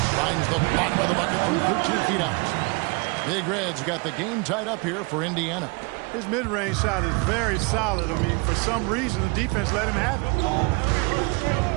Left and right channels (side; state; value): left; quieter; 29.5 dB